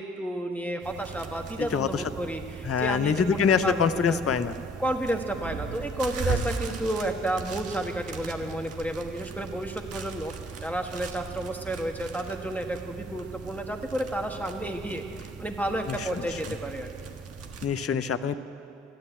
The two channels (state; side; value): normal; both; correlation 0.59